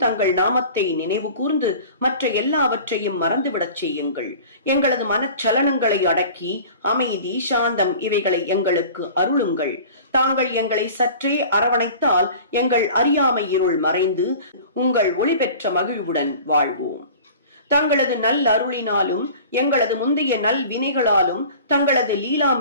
தங்கள் நாமத்தை நினைவு கூர்ந்து மற்ற எல்லாவற்றையும் மறந்துவிடச் செய்யுங்கள். எங்களது மனச்சலனங்களை அடக்கி அமைதி சாந்தம் இவைகளை எங்களுக்கு அருளுங்கள். தாங்கள் எங்களை சற்றே அரவணைத்தால் எங்கள் அறியாமை இருள் மறைந்து உங்கள் ஒளி பெற்ற மகிழ்வுடன் வாழ்வோம். தங்களது நல் அருளினாலும் எங்களது முந்தைய நல் வினைகளாலும் தங்களது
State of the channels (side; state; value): both; inverted; correlation -0.42